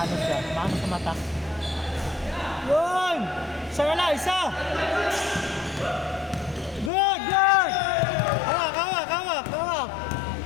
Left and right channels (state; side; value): drops out; right; at 6.9 s